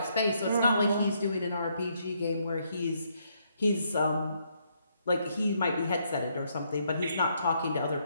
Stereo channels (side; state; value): both; inverted; correlation -0.73